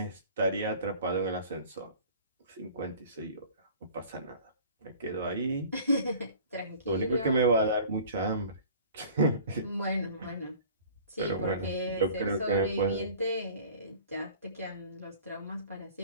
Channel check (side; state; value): both; inverted; correlation -0.47